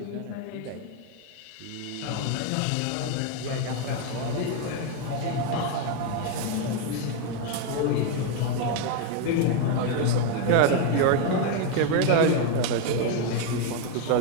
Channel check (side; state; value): both; different; correlation 0.01